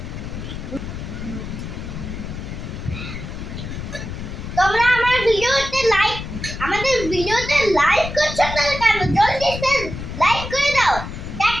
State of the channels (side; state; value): left; noise; rumble, 8 dB below the sound